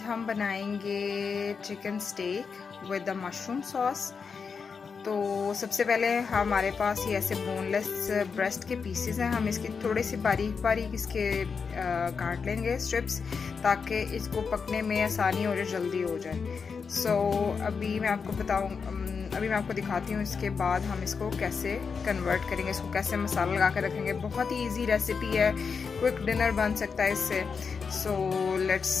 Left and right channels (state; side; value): quieter; right; 5.6 dB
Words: हम बनाएंगे chicken steak with the mushroom sauce. तो सबसे पहले हमारे पास ये ऐसे बोनलेस ब्रेस्ट के पीसेस हैं। हम इसकी थोड़ी सी बारीक बारीक इसके काट लेंगे स्ट्रिप्स, ताकि इसको पकने में आसानी और जल्दी हो जाए। अभी मैं आपको दिखाती हूँ इसके बाद हम इसको कैसे कन्वर्ट करेंगे, इसको कैसे मसाला लगा कर रखेंगे। बहुत ही इजी रेसिपी है, क्विक डिनर बन सकता है इससे। Let's